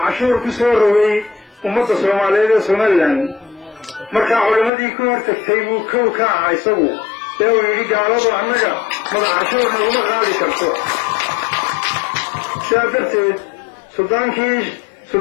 cashuur ku soo rogay ummadda Soomaaliyeed ee Somaliland markaa culimadii ka hortagtay buu kow ka ahaa isagu ee uu yidhi gaaladu annaga madax cashuur naguma qaadi karto sidaa darteed suldaankii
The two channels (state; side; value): drops out; right; at 4.7 s